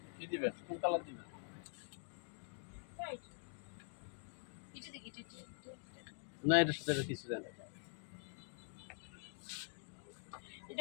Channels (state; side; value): silent; right; digital silence